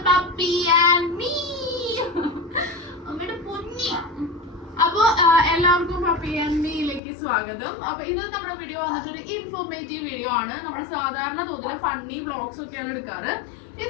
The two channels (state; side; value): drops out; right; at 7.0 s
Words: Puppy and me. അപ്പോൾ എല്ലാവർക്കും puppy and മീയിലേക്ക് സ്വാഗതം. അപ്പോൾ ഇന്ന് നമ്മുടെ വീഡിയോ വന്നിട്ടൊരു ഇൻഫോർമേറ്റീവ് വീഡിയോ ആണ്. നമ്മൾ സാധാരണ തോതിൽ ഫണ്ണി വ്ളോഗ്സ് ഒക്കെയാണ് എടുക്കാറ്.